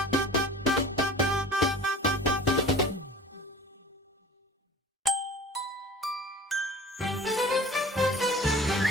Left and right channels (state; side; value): normal; both; correlation 0.42